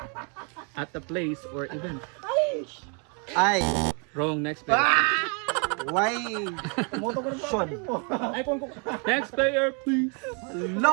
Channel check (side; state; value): left; quieter; 36.5 dB